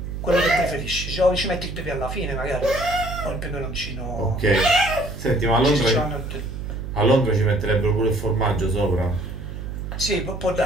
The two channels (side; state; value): right; noise; hum, 8 dB below the sound